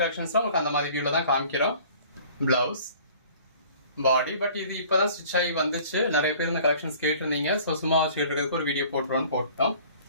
கலெக்ஷன்ஸ்லாம் உங்களுக்கு அந்த மாதிரி வியூவில் தான் காமிக்கிறோம். Blouse, body. பட் இது இப்போதான் ஸ்டிச் ஆகி வந்துச்சு. நிறைய பேர் இந்த கலெக்ஷன்ஸ் கேட்டிருந்தீங்க. ஸோ சும்மா வச்சுக்கிறதுக்கு ஒரு வீடியோ போட்டோம்.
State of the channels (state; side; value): inverted; both; correlation -0.50